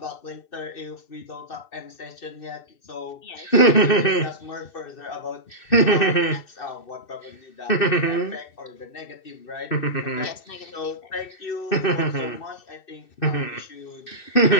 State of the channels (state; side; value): late; right; 2.6 ms